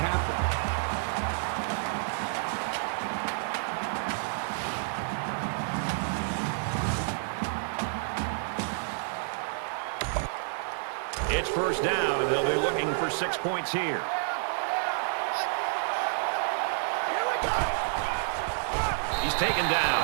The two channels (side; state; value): left; silent; digital silence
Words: It's 1st down, and they'll be looking for 6 points here. He's taken